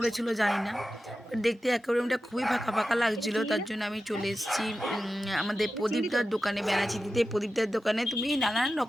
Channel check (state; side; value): normal; both; correlation 0.93